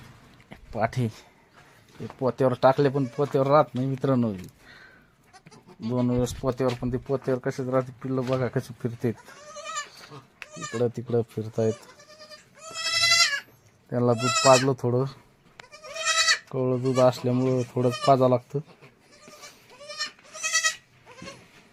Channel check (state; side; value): identical; both; correlation 1.00